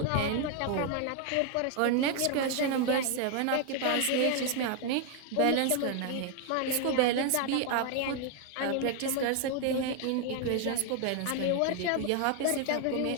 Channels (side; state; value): both; different; correlation 0.00